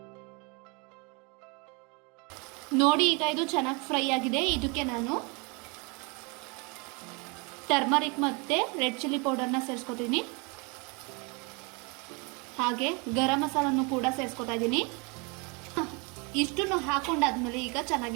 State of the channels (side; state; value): left; quieter; 30.7 dB